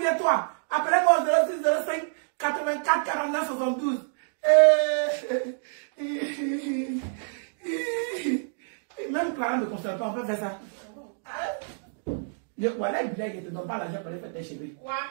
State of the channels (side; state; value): left; silent; digital silence